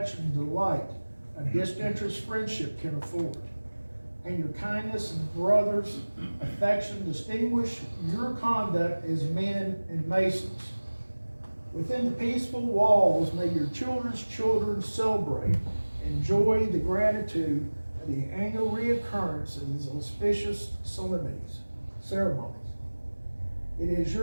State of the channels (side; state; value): both; inverted; correlation -1.00